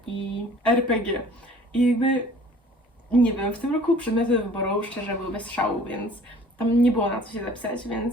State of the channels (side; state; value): both; normal; correlation 0.50